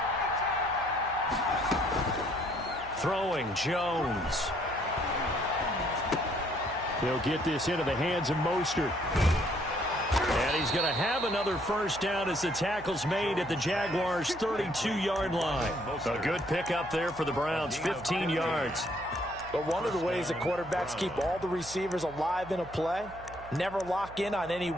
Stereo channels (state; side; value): noise; right; hum, 17 dB below the sound